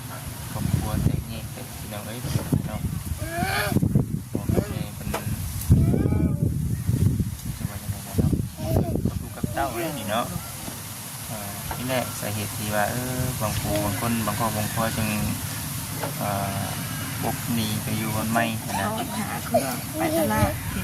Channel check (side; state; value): both; identical; correlation 1.00